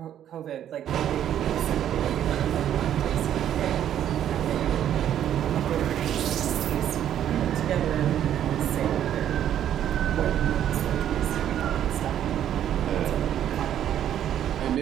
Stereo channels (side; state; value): left; quieter; 10.5 dB